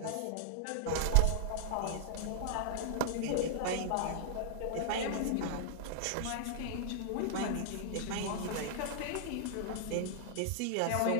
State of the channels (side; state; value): both; different; correlation -0.01